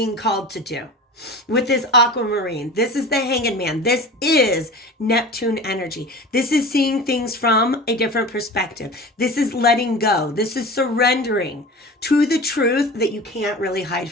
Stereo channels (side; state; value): both; normal; correlation 0.35